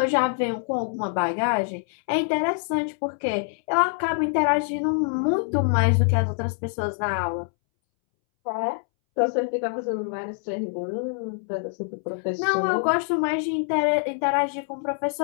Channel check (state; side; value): silent; right; 62 dB below the other